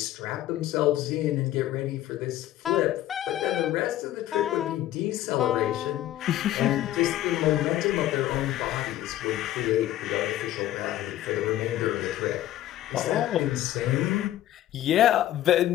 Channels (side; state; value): right; quieter; 13.6 dB